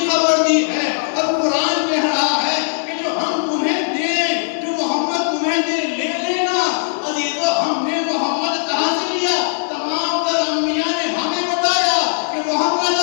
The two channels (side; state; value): right; silent; digital silence